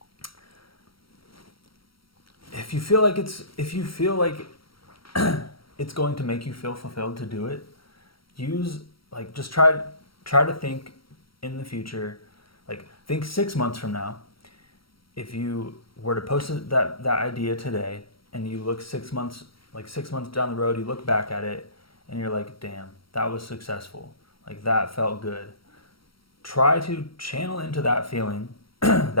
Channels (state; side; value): late; right; 0.74 ms